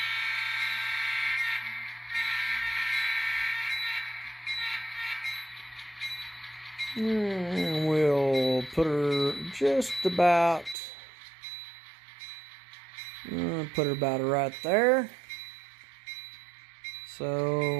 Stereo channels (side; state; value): left; drops out; at 10.8 s